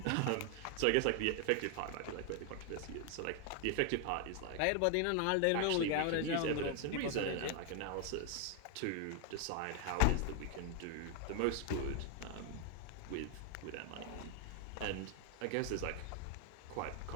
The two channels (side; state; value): both; different; correlation 0.00